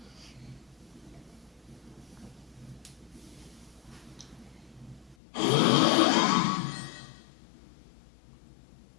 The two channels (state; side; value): drops out; right; at 5.2 s